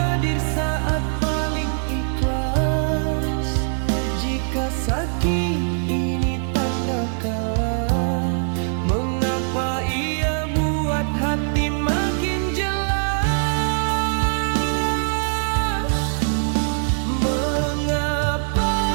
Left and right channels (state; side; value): silent; left; 64 dB below the other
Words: saat paling ikhlas? Jika sakit ini tanda kalah, mengapa ia buat hati makin jelas? Mengapa